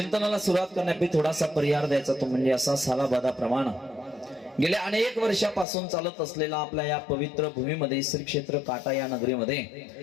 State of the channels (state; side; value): drops out; right; at 5.7 s